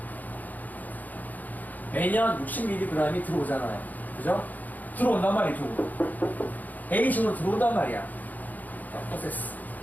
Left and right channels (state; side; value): late; right; 0.081 ms